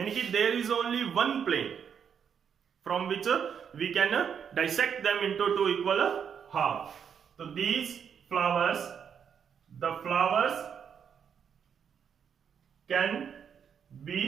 कि there is only one plane from which we can dissect them into two equal half. तो these flowers, the flowers can be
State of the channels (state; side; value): quieter; left; 7.5 dB